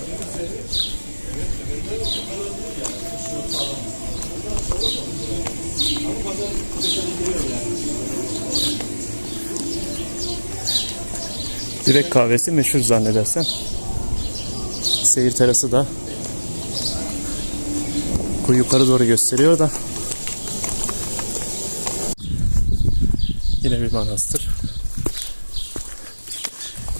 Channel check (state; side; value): inverted; both; correlation -1.00